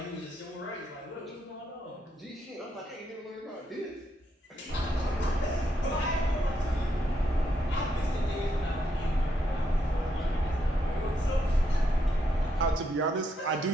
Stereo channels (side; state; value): both; normal; correlation 0.79